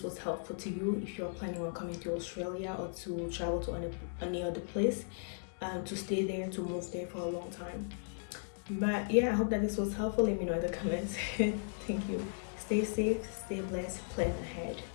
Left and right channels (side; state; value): right; silent; digital silence